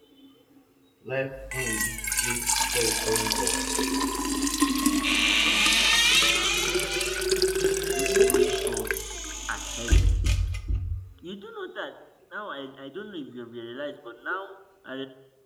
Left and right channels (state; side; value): identical; both; correlation 1.00